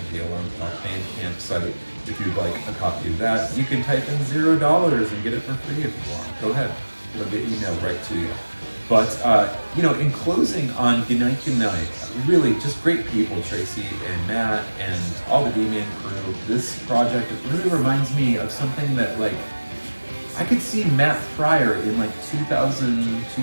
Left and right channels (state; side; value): inverted; both; correlation -1.00